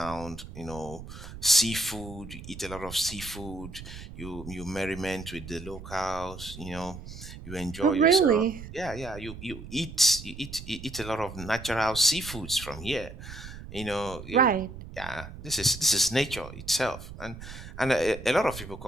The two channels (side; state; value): right; noise; rumble, 13 dB below the sound